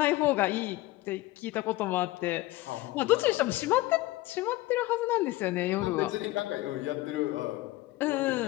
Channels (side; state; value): right; quieter; 18.3 dB